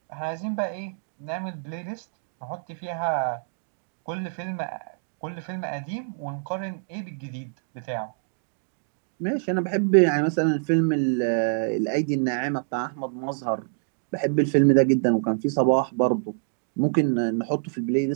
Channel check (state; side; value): silent; left; digital silence